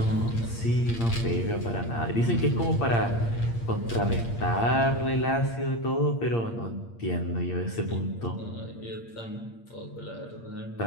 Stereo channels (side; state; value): right; late; 8.7 ms